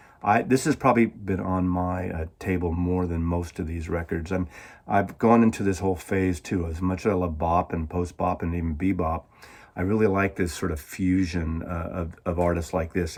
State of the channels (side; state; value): both; identical; correlation 1.00